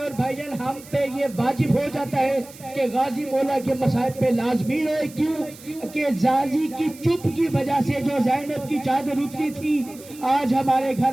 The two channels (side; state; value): right; noise; hiss, 20 dB below the sound